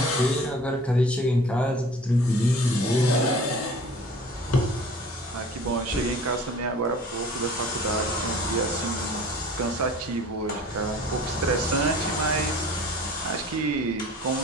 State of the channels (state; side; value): normal; both; correlation 0.46